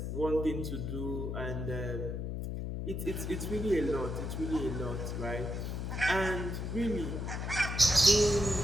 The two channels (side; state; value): left; noise; hum, 3 dB below the sound